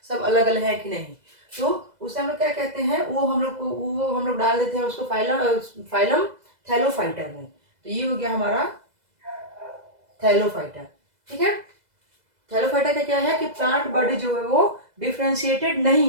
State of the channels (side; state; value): left; late; 2.0 ms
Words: सब अलग अलग है कि नहीं। तो उसे हम लोग क्या कहते हैं? वो हम लोग डाल देते हैं उसको फाइलम थैलोफाइटा में। तो ये हो गया हमारा थैलोफाइटा। ठीक है, थैलोफाइटा का क्या है कि प्लांट बॉडी जो है वो डिफरेंशिएटेड